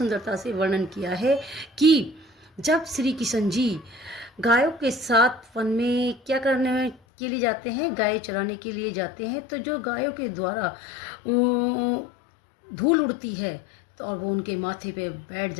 से वर्णन किया है कि जब श्री किशन जी गायों के साथ वन में क्या करने के लिए जाते हैं, गाय चराने के लिए जाते हैं, तो जो गायों के द्वारा धूल उड़ती है तो और वो उनके माथे पे बैठ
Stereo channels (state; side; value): drops out; right; at 7.0 s